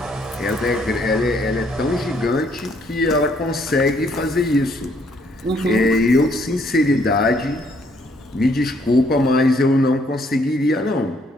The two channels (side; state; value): both; normal; correlation 0.67